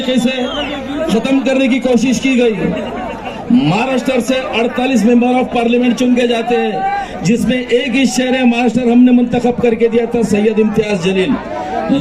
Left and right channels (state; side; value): identical; both; correlation 1.00